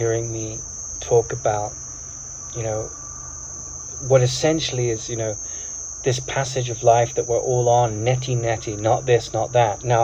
me talk about, you know, what essentially is, you know, this passage of life that we're all on, neti, not this, not that.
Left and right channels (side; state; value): both; identical; correlation 1.00